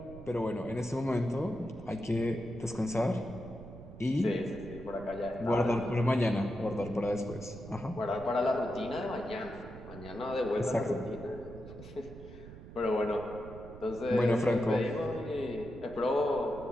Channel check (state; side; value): noise; right; rumble, 15 dB below the sound